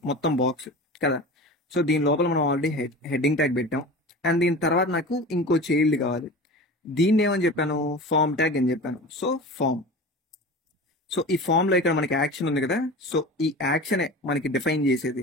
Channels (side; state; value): both; normal; correlation 0.34